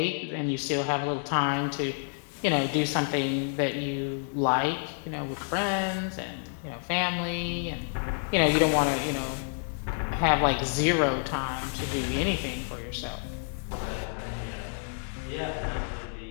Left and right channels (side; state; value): right; silent; 59 dB below the other